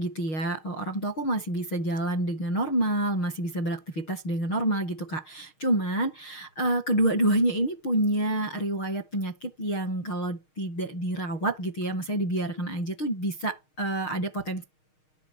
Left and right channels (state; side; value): late; right; 6.4 ms